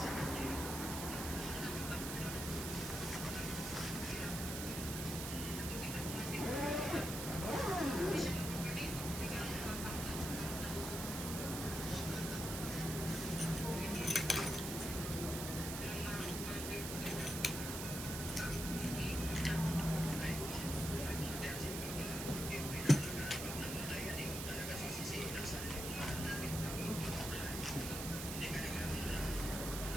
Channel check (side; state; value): right; noise; hiss, 5 dB below the sound